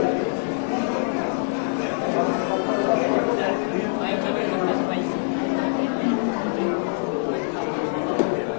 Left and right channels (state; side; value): silent; right; digital silence